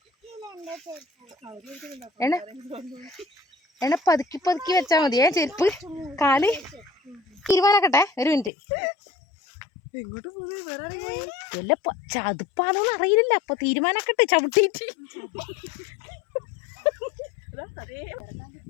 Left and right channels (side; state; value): right; drops out; at 8.5 s